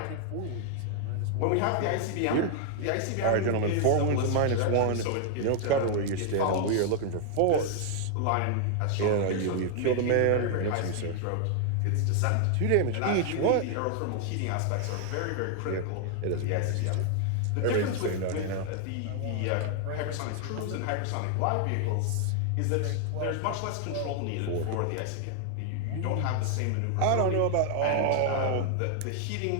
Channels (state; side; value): different; both; correlation 0.00